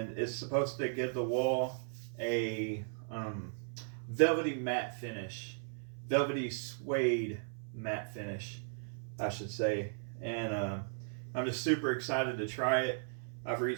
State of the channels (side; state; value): left; silent; 54 dB below the other